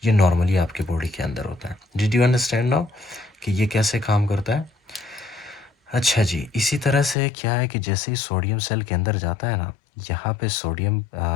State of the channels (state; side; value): drops out; right; at 7.2 s